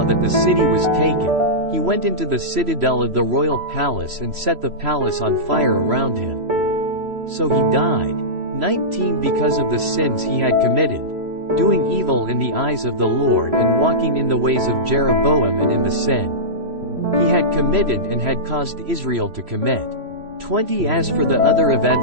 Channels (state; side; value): late; left; 3.0 ms